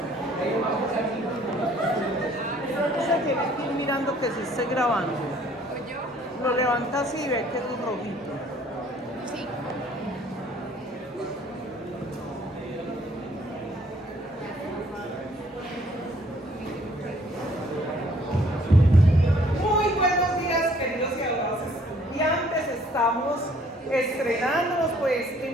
Ustedes se tienen que ir mirando que se esté grabando. Lo levanta así y ve que es rojito. Sí. Muy buenos días, queridos y adorados estudiantes. Estamos estrenándonos pues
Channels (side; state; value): both; normal; correlation 0.60